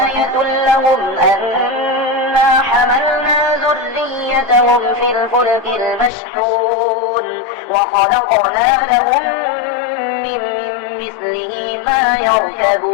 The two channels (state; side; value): drops out; right; at 6.1 s